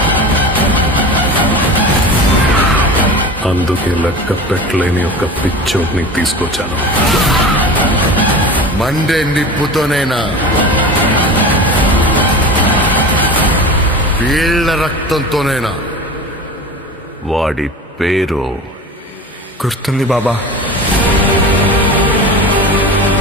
అందుకే లెక్క పెట్టలేని ఒక పిచ్చోడ్ని తీసుకొచ్చాను. మండే నిప్పుతోనైనా వీళ్ల రక్తంతోనైనా. వాడి పేరు గుర్తుంది బాబా.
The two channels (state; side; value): normal; both; correlation 0.33